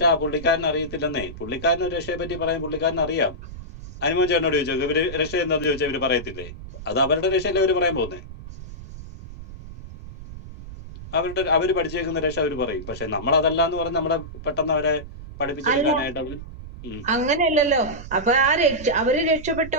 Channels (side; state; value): right; noise; rumble, 13 dB below the sound